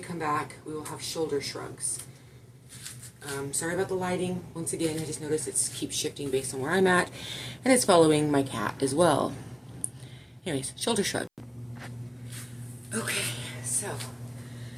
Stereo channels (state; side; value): identical; both; correlation 1.00